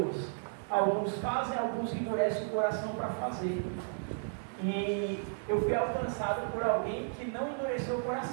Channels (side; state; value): left; silent; 55 dB below the other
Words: Alguns fazem, alguns endurecem o coração para fazer. E eu fui alcançado por alguém que não endureceu o